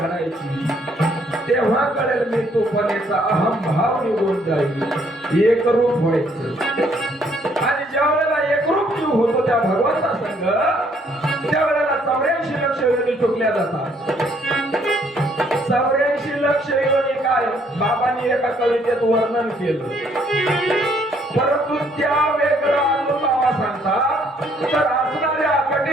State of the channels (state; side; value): normal; both; correlation 0.66